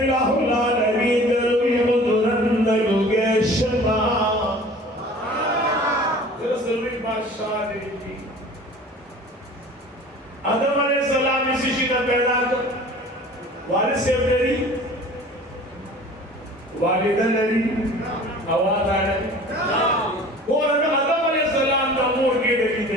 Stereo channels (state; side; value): normal; both; correlation 0.44